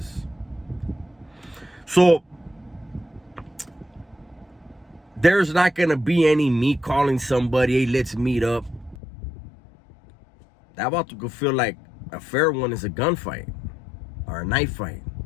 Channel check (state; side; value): drops out; right; at 9.0 s